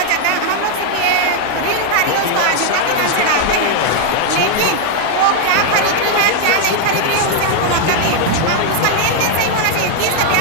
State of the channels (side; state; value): both; different; correlation 0.00